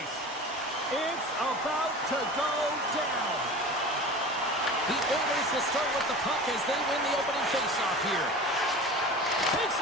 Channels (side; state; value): both; normal; correlation 0.36